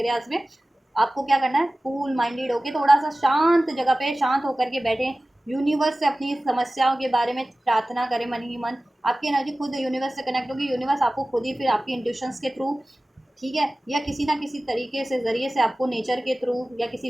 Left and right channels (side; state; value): both; normal; correlation 0.97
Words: में, आपको क्या करना है, कूल माइंडेड होके थोड़ा सा शांत जगह पे शांत होकर के बैठे, यूनिवर्स से अपनी समस्याओं के बारे में प्रार्थना करें मन ही मन। आपकी एनर्जी खुद यूनिवर्स से कनेक्ट होगी, यूनिवर्स आपको खुद ही फिर आपकी इंट्यूशंस के थ्रू, ठीक है, या किसी ना किसी तरीके से ज़रिए से आपको नेचर के थ्रू या